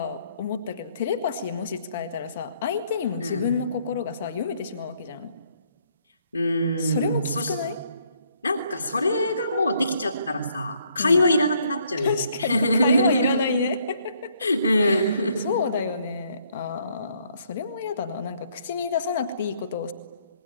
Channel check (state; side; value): inverted; both; correlation -0.69